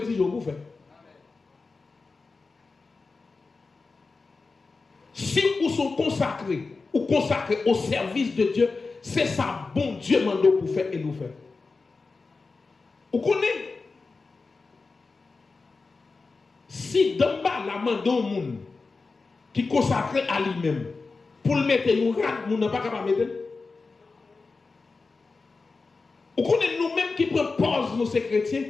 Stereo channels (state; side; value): quieter; right; 4.1 dB